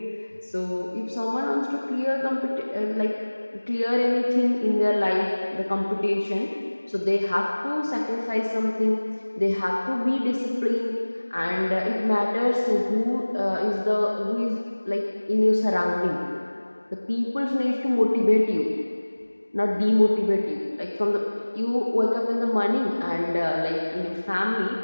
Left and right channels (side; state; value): both; inverted; correlation -1.00